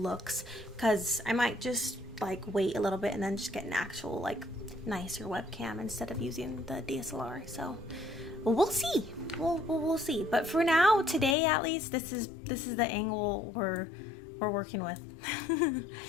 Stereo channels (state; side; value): drops out; right; at 11.4 s